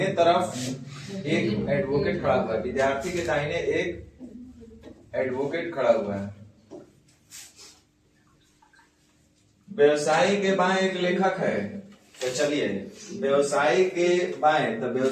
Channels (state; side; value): identical; both; correlation 1.00